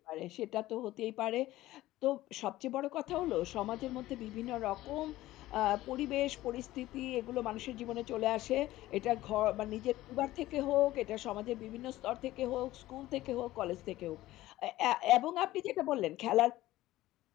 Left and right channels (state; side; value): quieter; right; 16.2 dB